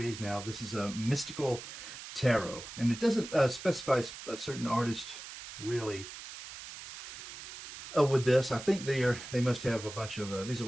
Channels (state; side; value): noise; right; hiss, 12 dB below the sound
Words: now. This is a Mystical Tarot, and it doesn't specify a certain artist really. With this, I think they must have a bunch of these are